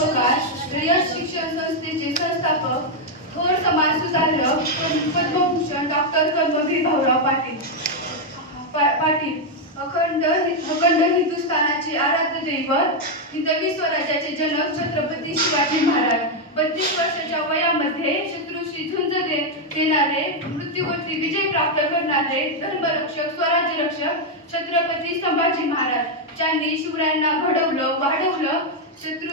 रयत शिक्षण संस्थेचे संस्थापक, थोर समाज सुधारक, पद्मभूषण डॉक्टर कर्मवीर भाऊराव पाटील, अखंड हिंदुस्थानाचे आराध्य दैवत, हिंदवी स्वराज्याचे जनक छत्रपती शिवाजी महाराज, 32 वर्षाच्या वयामध्ये शत्रूशी झुंज देणारे, मृत्यूवरती विजय प्राप्त करणारे धर्मरक्षक, स्वराज्य रक्षक छत्रपती संभाजी महाराज, ज्यांनी शिवरायांना घडवलं, वाढवलं,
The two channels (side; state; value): both; normal; correlation 0.01